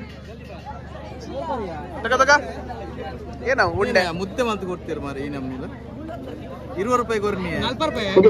ಏನ ಉಂಡೆ ಮುದ್ದೆ ಮಂತ್ ಕೊಡ್ತೀರಿ ಮಾರಿ ಈ ನಮ್ನಿಲ್ಲ 20 ರೂಪಾಯಿ ಕೊರ್ನಿ 40 ರೂಪಾಯಿ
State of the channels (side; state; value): both; identical; correlation 1.00